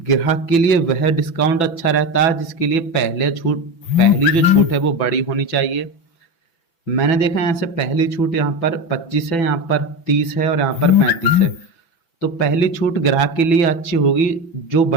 के लिए वह डिस्काउंट अच्छा रहता है जिसके लिए पहली जो छूट है वो बड़ी होनी चाहिए। मैंने देखा यहाँ से पहली छूट यहाँ पर 25 है, यहाँ पर 30 है और यहाँ पर 35 है। तो पहली छूट ग्राहक के लिए अच्छी होगी जो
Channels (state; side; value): late; right; 6.0 ms